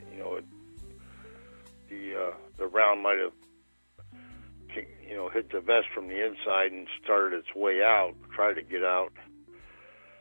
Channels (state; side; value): inverted; both; correlation -1.00